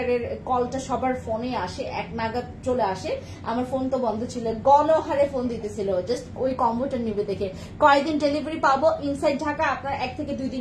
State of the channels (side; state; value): both; identical; correlation 1.00